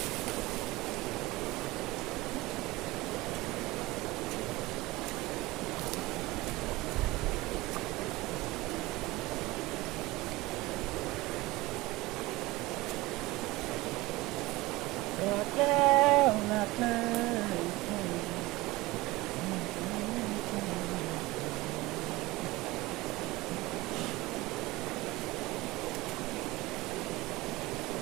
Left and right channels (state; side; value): quieter; left; 20.2 dB